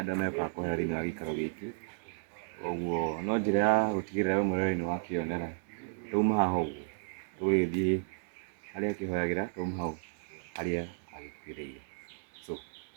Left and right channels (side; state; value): left; silent; digital silence